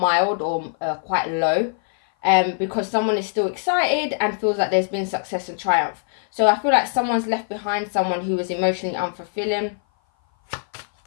or quite low. Because someone is still excited and feels like there's been success and triumph. So I feel like someone's left behind someone who was emotionally unfulfilling,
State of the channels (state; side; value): silent; right; 57 dB below the other